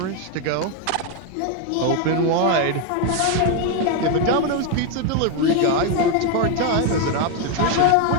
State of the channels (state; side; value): different; both; correlation 0.01